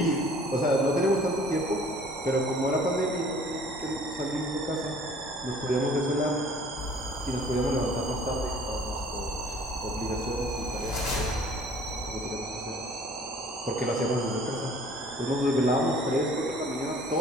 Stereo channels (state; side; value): normal; both; correlation 0.53